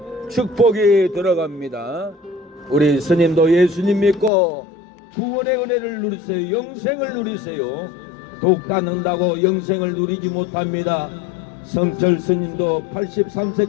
축복이 들어갑니다. 우리 스님도 예수님 믿고 구원의 은혜를 누리세요. 영생을 누리세요. 독 닦는다고 영생을 누리지 못합니다. 성철 스님도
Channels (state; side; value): drops out; right; at 4.3 s